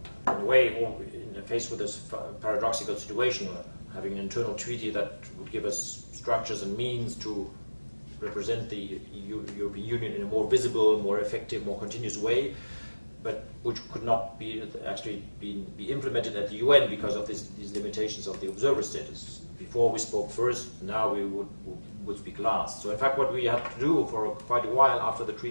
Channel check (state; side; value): inverted; both; correlation -1.00